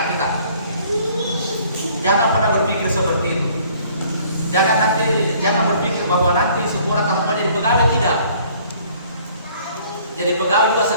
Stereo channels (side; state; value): both; inverted; correlation -0.57